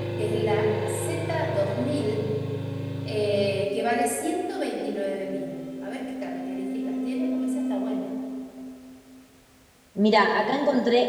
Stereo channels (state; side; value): identical; both; correlation 1.00